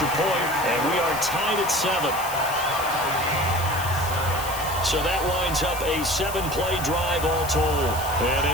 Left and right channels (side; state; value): left; noise; hiss, 10 dB below the sound